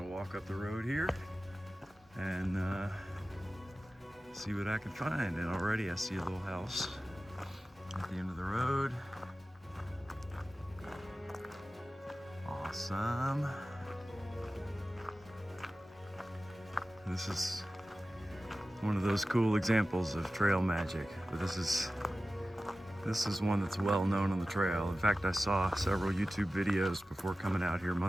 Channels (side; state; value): both; normal; correlation 0.95